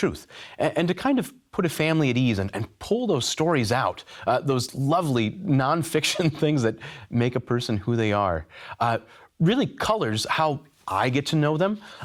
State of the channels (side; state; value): both; identical; correlation 1.00